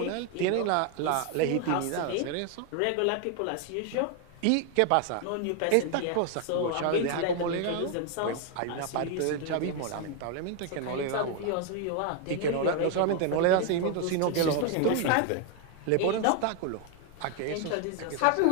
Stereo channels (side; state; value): both; different; correlation 0.01